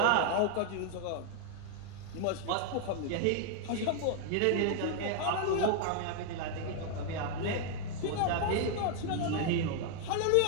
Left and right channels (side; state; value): both; different; correlation 0.00